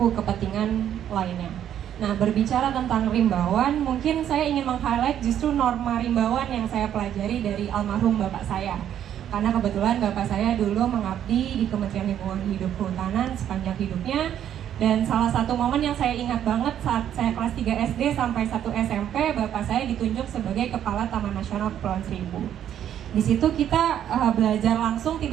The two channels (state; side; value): quieter; left; 10.3 dB